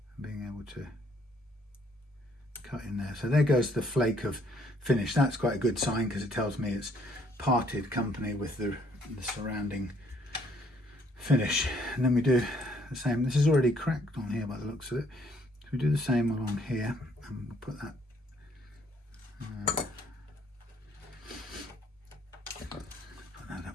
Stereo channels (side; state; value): both; normal; correlation 0.66